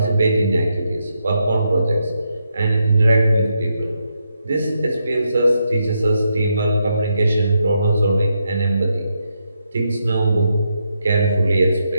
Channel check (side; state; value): both; inverted; correlation -0.82